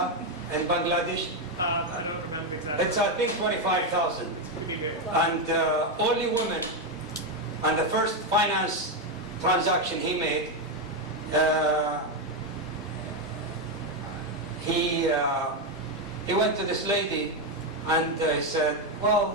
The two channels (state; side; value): normal; both; correlation 0.06